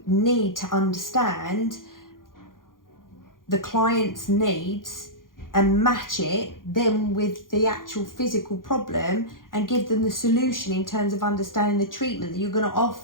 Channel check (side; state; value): right; late; 0.90 ms